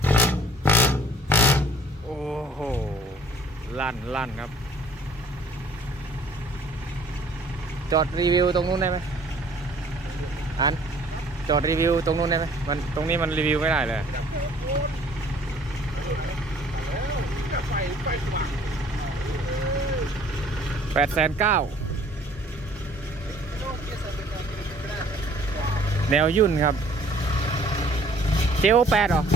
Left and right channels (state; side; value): normal; both; correlation 0.55